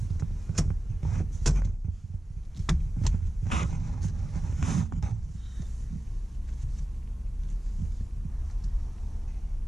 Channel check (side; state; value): both; normal; correlation 0.94